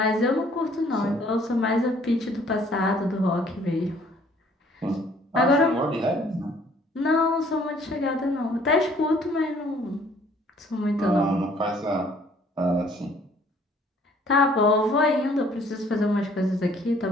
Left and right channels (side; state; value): both; normal; correlation 0.59